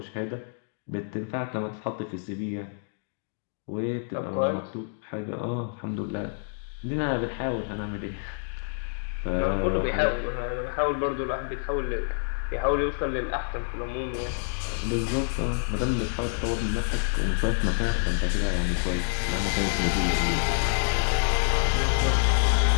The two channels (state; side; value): silent; right; digital silence